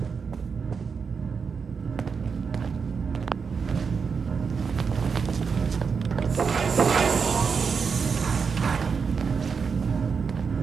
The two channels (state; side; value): quieter; left; 5.7 dB